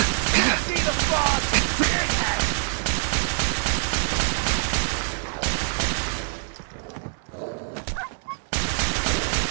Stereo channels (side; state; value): left; silent; digital silence